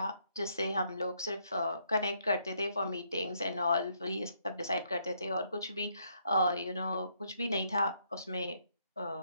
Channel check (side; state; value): both; inverted; correlation -0.72